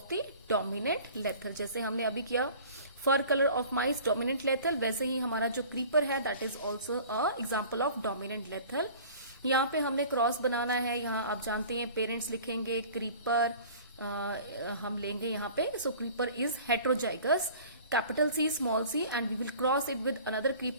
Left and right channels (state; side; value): inverted; both; correlation -0.45